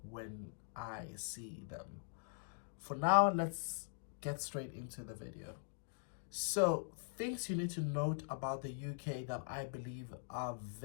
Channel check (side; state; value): right; silent; digital silence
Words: when I see them. For now, let's get straight into the video. So, things you need to note about the UK that I believe are